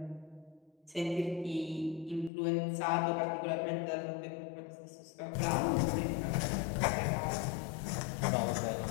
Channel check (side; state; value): right; drops out; at 2.3 s